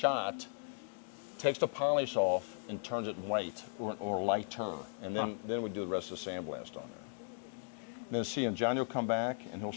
takes the polish off and turns it white or lighter, and then we do the rest of the sandblast on there. Then see, and Johnny will come back and he'll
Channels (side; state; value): right; silent; digital silence